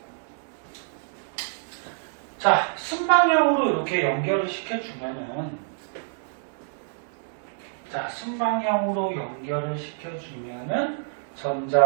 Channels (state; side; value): silent; left; digital silence